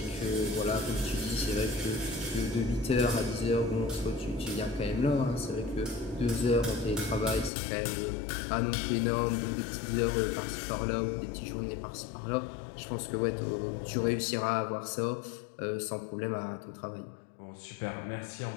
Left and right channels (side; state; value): right; drops out; at 7.5 s